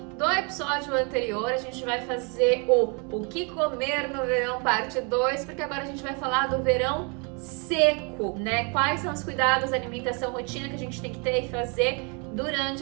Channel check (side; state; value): left; quieter; 34.5 dB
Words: episódio anterior. A gente vai fazer o que comer no verão parte 2, porque agora a gente vai falar do verão seco, né? Quais são os cuidados, alimentação, rotina que a gente tem que ter e fazer